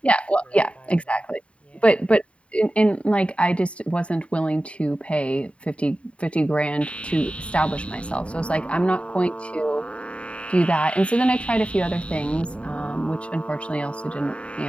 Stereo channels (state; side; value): late; right; 0.062 ms